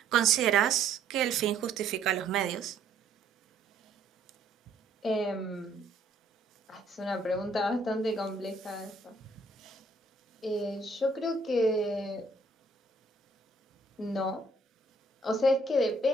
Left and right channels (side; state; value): left; quieter; 3.1 dB